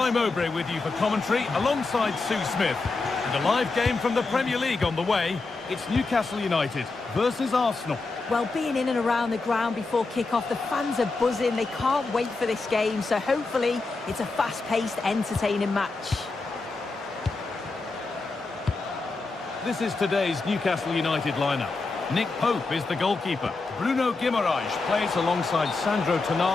Mowbray with you for commentary alongside Sue Smith. And a live game from the Premier League on the way. It's Newcastle United versus Arsenal. Well, being in and around the ground before kick-off, the fans are buzzing. They can't wait for this game, so hopefully it's a fast-paced, entertaining match. This is today's Newcastle United lineup. Nick Pope is the goalkeeper. Bruno Guimaraes plays alongside Sandro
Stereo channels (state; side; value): quieter; right; 3.7 dB